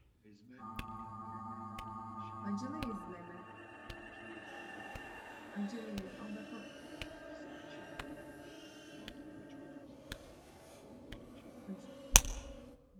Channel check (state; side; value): identical; both; correlation 1.00